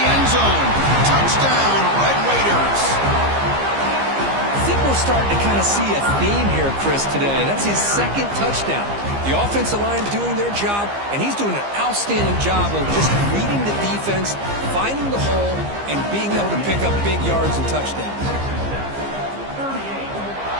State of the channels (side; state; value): left; late; 15 ms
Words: end zone. Touchdown, Red Raiders. I think we're starting to kind of see a theme here, Chris, today. That's his 2nd touchdown. The offensive line doing their job, and he's doing an outstanding job of just reading the defense, finding the hole, and being able to pick up big yards and touchdowns.